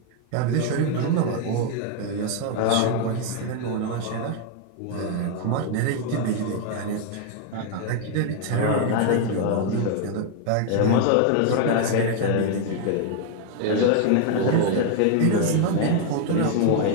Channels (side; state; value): both; different; correlation 0.00